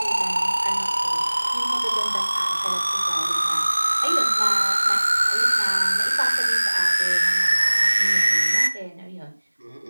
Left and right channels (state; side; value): inverted; both; correlation -1.00